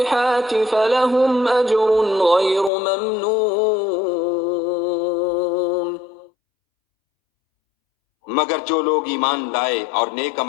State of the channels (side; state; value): right; drops out; at 2.7 s